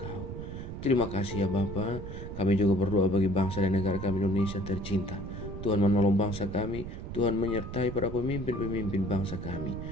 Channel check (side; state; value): right; noise; rumble, 8 dB below the sound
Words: Terima kasih ya Bapa. Kami juga berdoa bagi bangsa dan negara kami Indonesia tercinta. Tuhan menolong bangsa kami, Tuhan menyertai para pemimpin-pemimpin bangsa kami.